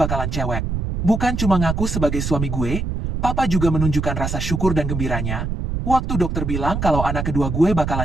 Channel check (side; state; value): right; noise; rumble, 3 dB below the sound